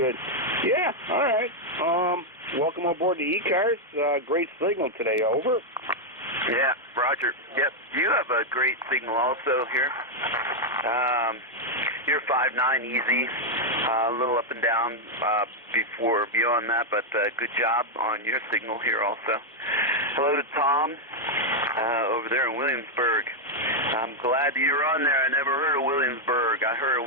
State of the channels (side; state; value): both; normal; correlation 0.00